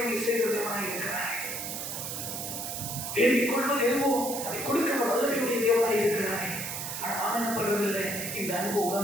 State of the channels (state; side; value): noise; right; hiss, 5 dB below the sound